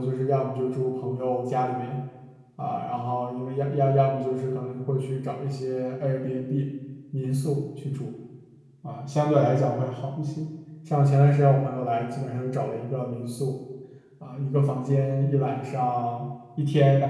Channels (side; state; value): both; identical; correlation 1.00